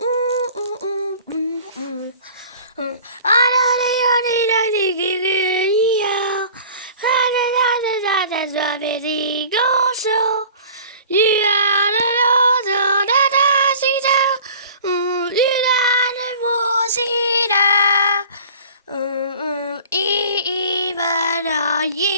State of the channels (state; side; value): inverted; both; correlation -0.44